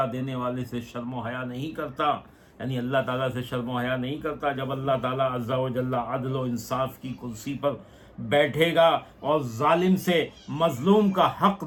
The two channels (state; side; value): identical; both; correlation 1.00